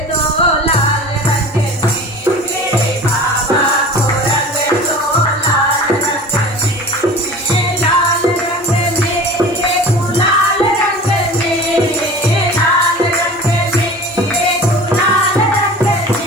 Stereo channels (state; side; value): normal; both; correlation 0.39